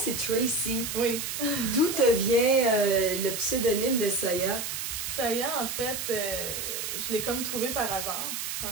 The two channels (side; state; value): right; noise; hiss, 4 dB below the sound